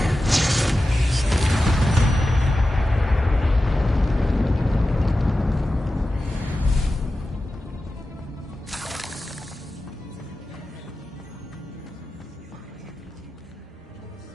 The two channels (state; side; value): normal; both; correlation 0.93